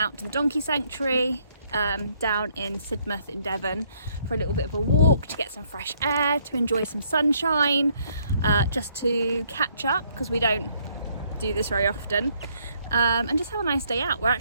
to the donkey sanctuary down in Sidmouth in Devon for a little bit of a walk, to get some fresh air, to enjoy some sunshine, just to catch up because we don't do this very often, and just have a nice day out. We're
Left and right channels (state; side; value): inverted; both; correlation -0.68